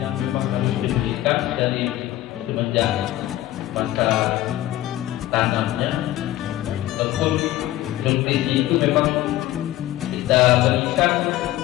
yang memang harus diberikan dari semenjak masa tanamnya, ataupun nutrisi itu memang kita berikan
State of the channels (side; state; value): right; quieter; 15.0 dB